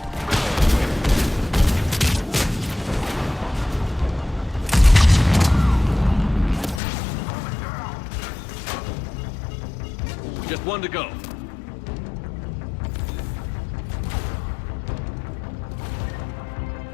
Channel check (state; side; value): drops out; right; at 6.8 s